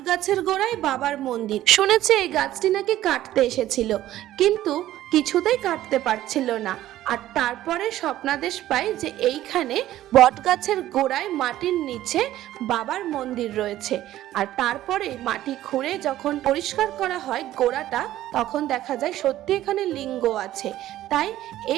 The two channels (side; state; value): left; quieter; 13.9 dB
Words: গাছের গোড়ায় বাবার মন্দির। শুনেছি এই গাছটি নাকি কাটতে এসেছিল, কিন্তু কিছুতেই কাটতে পারছিল না। আর তারপরে স্বপ্নাদেশ পাই যে এইখানে বটগাছের গোড়ায় মাটির নিচে বাবার মন্দির রয়েছে। আর তারপরে মাটি খুঁড়ে যখন পরিষ্কার করা হয় গোড়াটা, তখন দেখা যায় সত্যি এখানে লিঙ্গ আছে। তাই